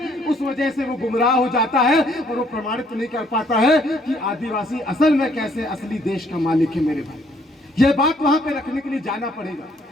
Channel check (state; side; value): normal; both; correlation 0.65